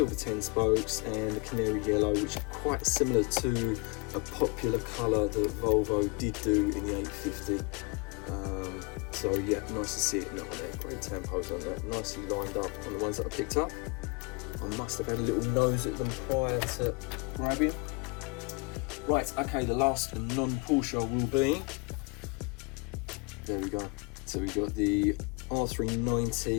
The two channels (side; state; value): right; quieter; 30.2 dB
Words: 10 spokes and the canary yellow, which is quite similar to a popular colour that Volvo did do in the 850. So yeah, nice to see it in that one there. Great tempos on that, nicely lined up on the ones that I picked up. I must have had a little nose at them prior to grabbing. Right, okay, the last non-Porsche will be, there we go. So we've got the